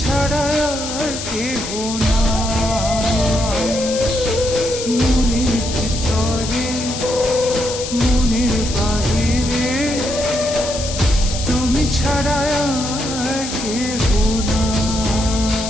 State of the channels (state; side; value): noise; left; hiss, 7 dB below the sound